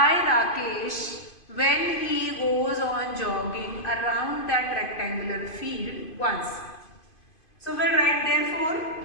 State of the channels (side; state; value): right; late; 2.5 ms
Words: Rakesh when he goes on jogging around that rectangular field once. So we'll write therefore